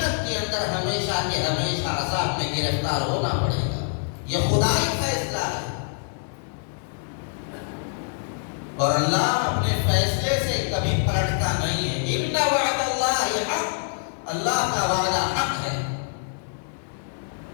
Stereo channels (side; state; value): right; silent; 62 dB below the other